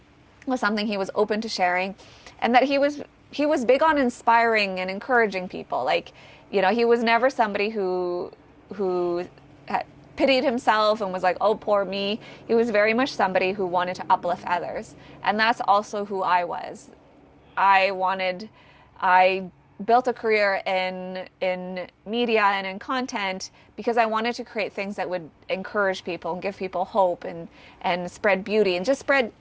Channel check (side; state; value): both; identical; correlation 1.00